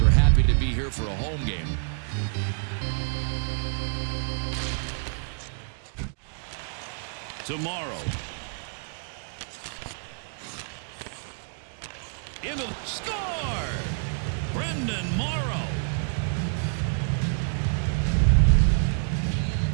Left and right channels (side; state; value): left; silent; 60 dB below the other